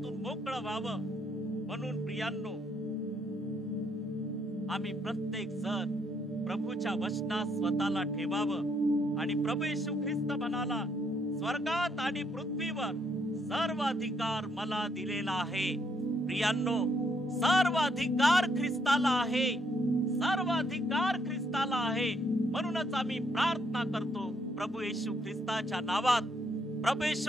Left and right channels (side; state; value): both; normal; correlation 0.72